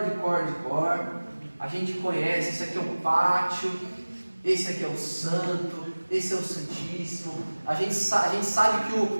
A gente conhece, esse aqui é o pátio, esse aqui é o santo, esse é o santíssimo. A gente sabe que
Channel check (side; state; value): both; inverted; correlation -1.00